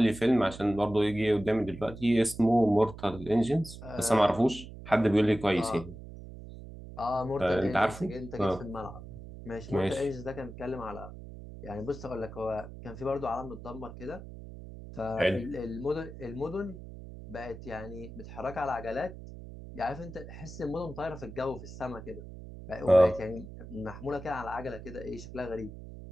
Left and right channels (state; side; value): noise; right; hum, 13 dB below the sound